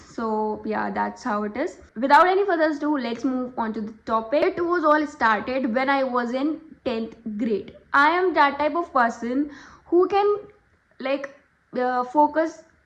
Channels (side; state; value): both; identical; correlation 1.00